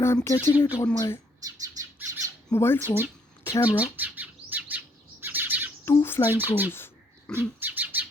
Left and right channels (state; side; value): normal; both; correlation 0.68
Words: I'm catching it on my mobile phone camera. Two flying crows